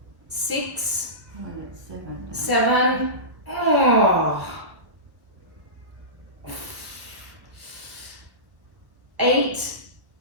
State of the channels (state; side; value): late; left; 1.2 ms